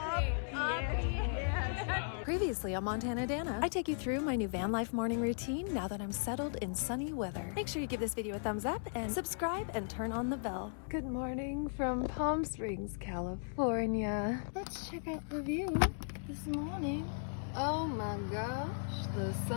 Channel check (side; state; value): right; silent; digital silence